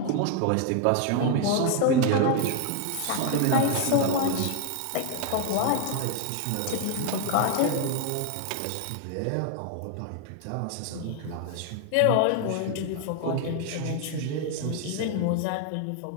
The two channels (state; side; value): different; both; correlation 0.00